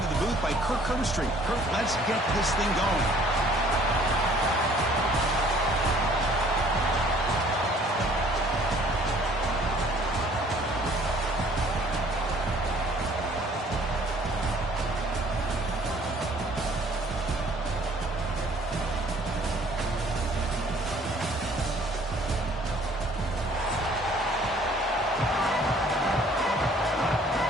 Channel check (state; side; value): normal; both; correlation 0.57